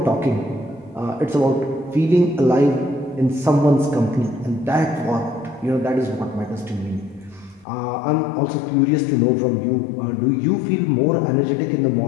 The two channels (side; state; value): right; drops out; at 7.7 s